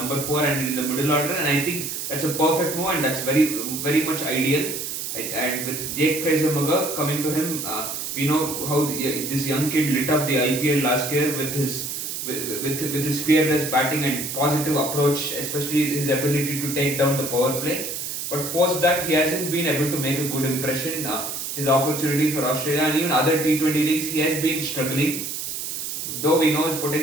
4 and in the middle order. And I think that's a perfect move, and that's very much ideal. And with Jake Fraser-Maguk coming to him, we know how this young kid lit up the IPL last year with his fearless batting and positive approach, especially his ability to take down the power play. But post that, he hasn't been able to make a good impression. His opportunities for Australia and even other T20 leagues, he has been struggling. Though we know his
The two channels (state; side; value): noise; right; hiss, 5 dB below the sound